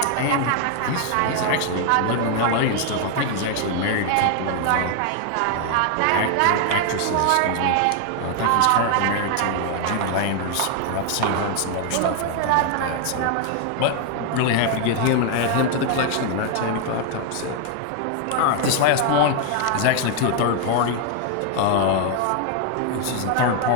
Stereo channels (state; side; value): different; both; correlation 0.00